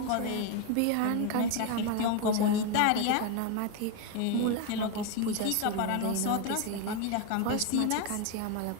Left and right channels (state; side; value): different; both; correlation 0.01